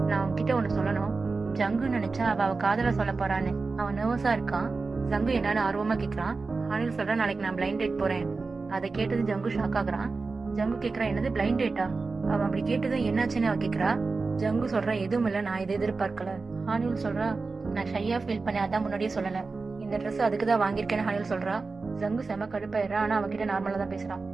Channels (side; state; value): left; quieter; 4.1 dB